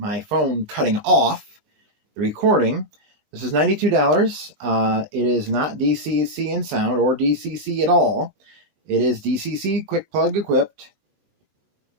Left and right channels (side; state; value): left; late; 20 ms